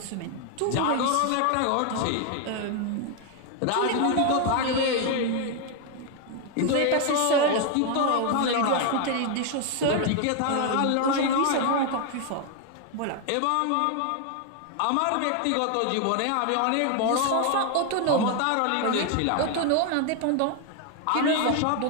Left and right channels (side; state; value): both; different; correlation 0.01